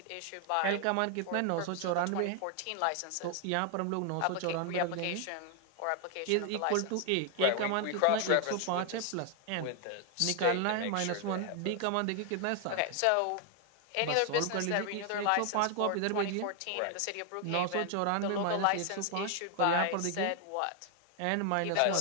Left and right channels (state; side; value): different; both; correlation 0.00